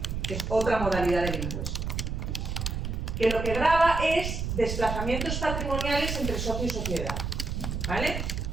que es otra modalidad del impuesto, que lo que grava es desplazamientos patrimoniales entre socio y sociedad, ¿vale?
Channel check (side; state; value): right; noise; rumble, 3 dB below the sound